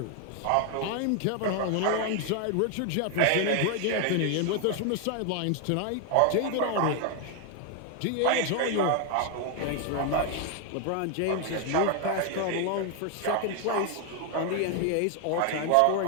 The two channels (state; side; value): different; both; correlation 0.01